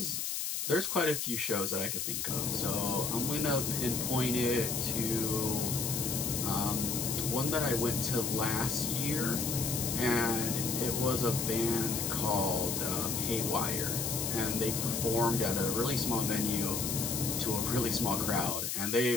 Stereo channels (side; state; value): left; noise; hiss, 1 dB below the sound